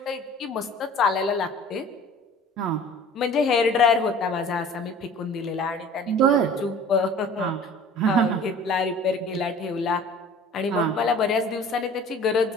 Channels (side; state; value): both; normal; correlation 0.45